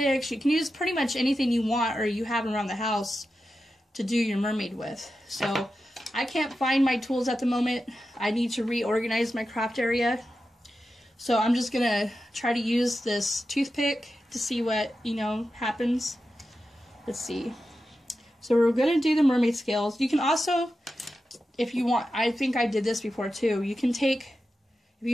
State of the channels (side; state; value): both; normal; correlation 0.91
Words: You can use pretty much anything you want or you have around the house to do your mermaid with. So I can't find my tools at the moment. I need to reorganize my craft area. So I'm just gonna try to use this toothpick to see what, happens. Let's see. So we're gonna do the mermaid scales. You can also, if you want, I think I did this before too, you can take, if